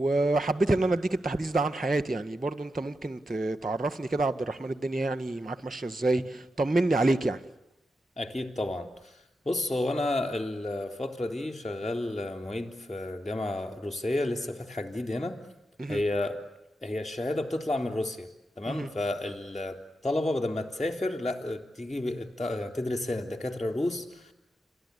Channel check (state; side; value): normal; both; correlation 0.87